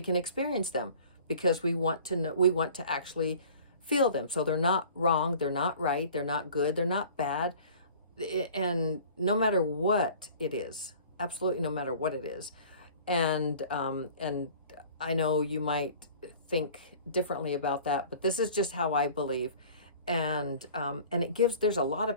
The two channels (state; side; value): inverted; both; correlation -0.47